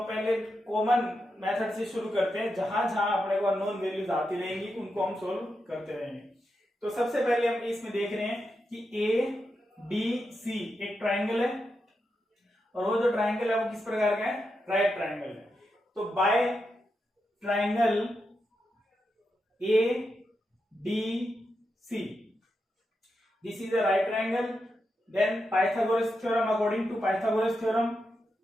पहले कॉमन मेथड से शुरू करते हैं, जहां जहां अपने को अननोन वैल्यूज आती रहेंगी उनको हम सोल्व करते रहेंगे। तो सबसे पहले हम इसमें देख रहे हैं कि ABC एक ट्राइंगल है और वो जो ट्राइंगल है वो किस प्रकार का है, राइट ट्राइंगल है। तो by triangle ADC this is a right triangle, then Pythagoras theorem, according to Pythagoras theorem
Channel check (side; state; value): both; normal; correlation 0.86